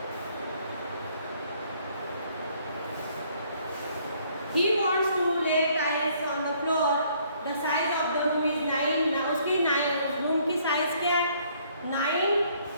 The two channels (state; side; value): inverted; both; correlation -0.64